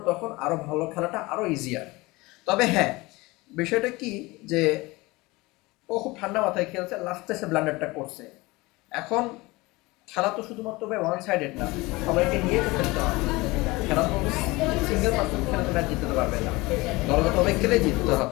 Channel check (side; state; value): right; quieter; 22.3 dB